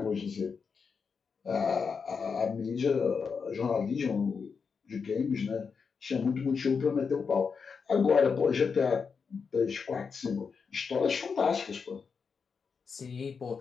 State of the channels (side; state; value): right; quieter; 5.6 dB